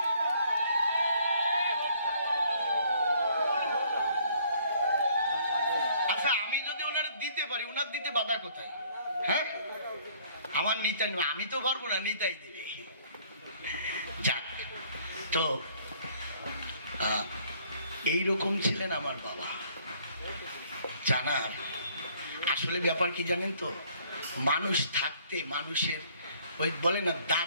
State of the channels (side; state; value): both; inverted; correlation -0.61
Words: আচ্ছা আমি যদি ওনার দিতে পারি, ওনার দিতে বাধা কোথায়? হ্যাঁ, আমার নিতাই নেবে, আমি তো পারবো না, নিতাই দেবে। যাক, তো এইরকম ছিলেন আমার বাবা। জানার আসলে ব্যাপার কি জানেন তো, মানুষ থাকতে মানুষের ওই বলে না